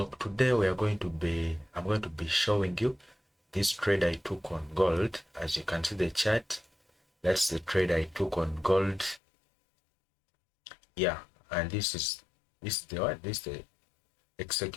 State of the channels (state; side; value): drops out; right; at 9.2 s